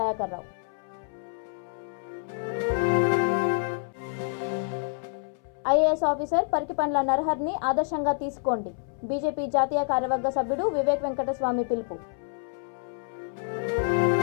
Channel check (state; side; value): silent; right; 60 dB below the other